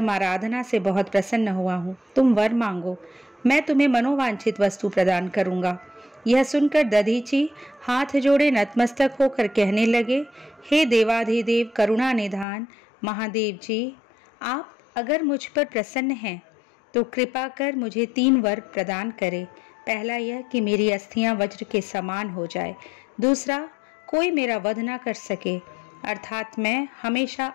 आराधना से बहुत प्रसन्न हुआ हूँ। तुम वर मांगो, मैं तुम्हें मनोवांछित वस्तु प्रदान करूँगा। यह सुनकर दधीची हाथ जोड़े नतमस्तक होकर कहने लगे, हे देवाधिदेव करुणा निधान महादेव जी, आप अगर मुझ पर प्रसन्न हैं तो कृपा कर मुझे 3 वर प्रदान करें। पहला यह कि मेरी अस्थियां वज्र के समान हो जाए, दूसरा कोई मेरा वध न कर सके अर्थात मैं हमेशा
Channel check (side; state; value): right; drops out; at 12.5 s